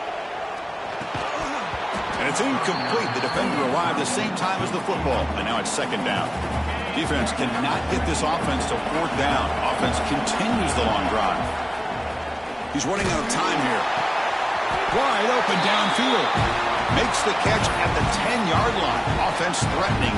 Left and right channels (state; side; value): identical; both; correlation 1.00